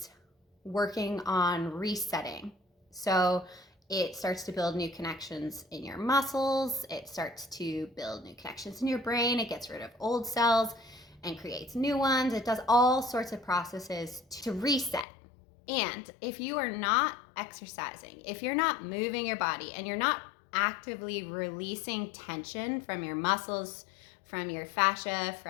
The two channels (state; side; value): drops out; right; at 15.1 s